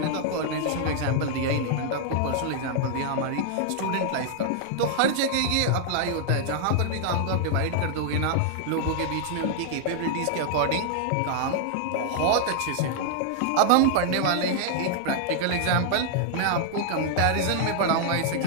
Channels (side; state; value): both; different; correlation -0.01